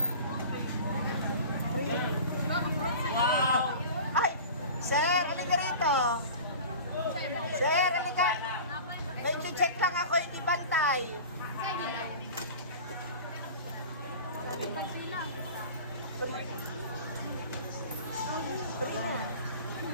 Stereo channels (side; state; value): both; inverted; correlation -0.37